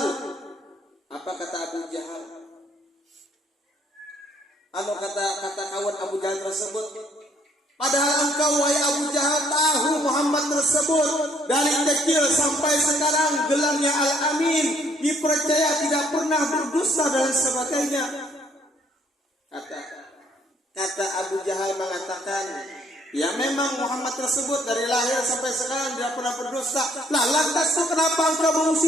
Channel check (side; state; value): both; normal; correlation 0.65